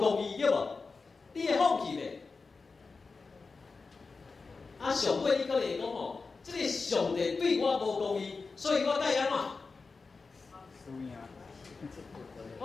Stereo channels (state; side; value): quieter; right; 4.3 dB